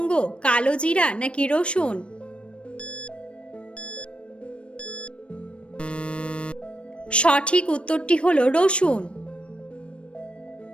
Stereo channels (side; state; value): right; late; 0.059 ms